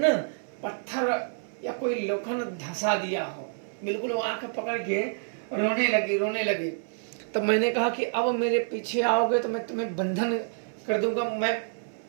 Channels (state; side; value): silent; left; 59 dB below the other